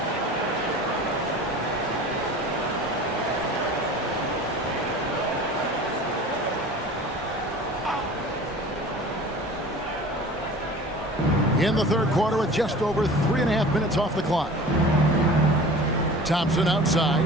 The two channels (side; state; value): both; normal; correlation 0.41